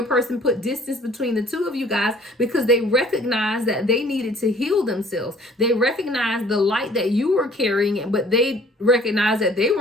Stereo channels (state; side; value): normal; both; correlation 0.54